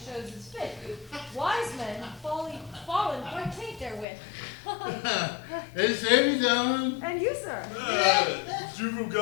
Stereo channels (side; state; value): right; drops out; at 4.0 s